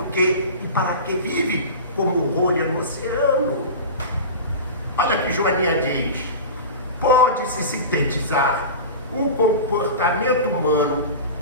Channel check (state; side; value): inverted; both; correlation -0.30